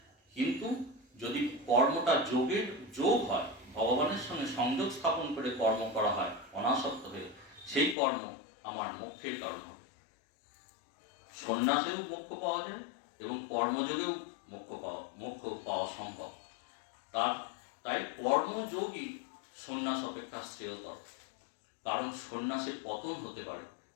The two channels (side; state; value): right; drops out; at 8.0 s